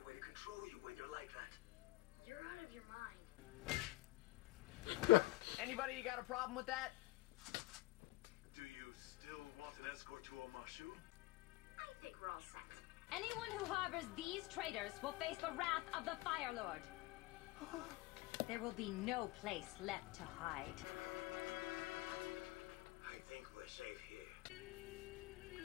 a way to control you when you're like that. You're out of your mind. Anybody got a problem with that? Do you still want an escort to Omashu? I think we're all set. Anyone who harbors these traitors will face the wrath of the Fire Lord. There will be no place left to hide. I think we're safe here.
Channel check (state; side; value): quieter; right; 18.8 dB